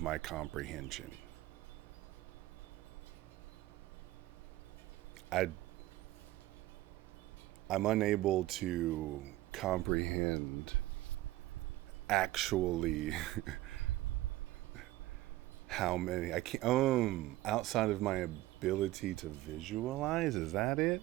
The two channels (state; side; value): quieter; left; 16.8 dB